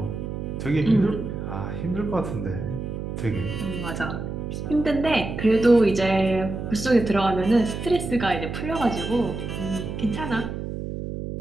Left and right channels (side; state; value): right; noise; hum, 6 dB below the sound